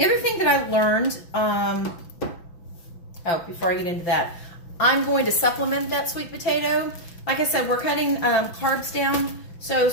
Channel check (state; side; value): late; right; 6.0 ms